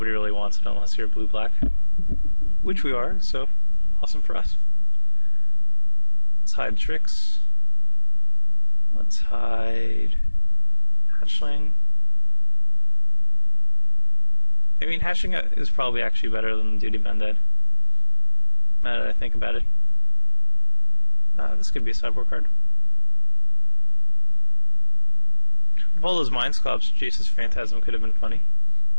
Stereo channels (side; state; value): both; inverted; correlation -1.00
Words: really wants it unless you're blue-black. Which we are, so awesome for us. Let's hide tricks. Let's hide hatchling. I mean, hatching is probably actually better than Duty Banded. Now that I think about it. This could be a sideboard card. With all those Mind Sculpts, Jace's Phantasm could have been funny.